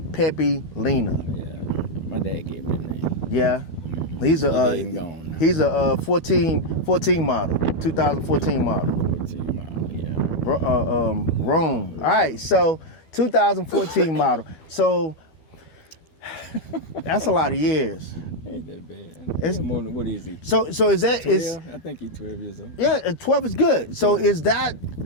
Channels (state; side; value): late; right; 12 ms